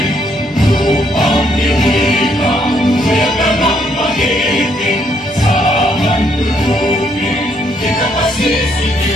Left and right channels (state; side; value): normal; both; correlation 0.72